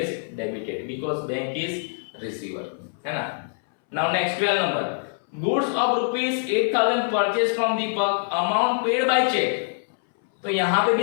debited because bank is receiver, है ना? Now next 12 number, goods of rupees 8,000 purchased from Deepak, amount paid by check. तो यहाँ पे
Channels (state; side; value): silent; right; 62 dB below the other